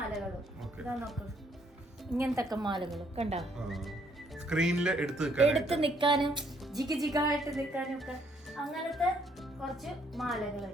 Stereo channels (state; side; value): normal; both; correlation 0.68